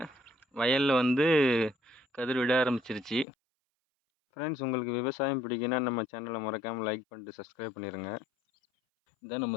வயலில் வந்து கதிர் விட ஆரம்பிச்சிருச்சு. ஃப்ரெண்ட்ஸ், உங்களுக்கு விவசாயம் பிடிக்குன்னா நம்ம சேனலை மறக்காமல் லைக் பண்ணிட்டு சப்ஸ்கிரைப் பண்ணிடுங்க. இதான் நம்ம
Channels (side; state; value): right; drops out; at 3.2 s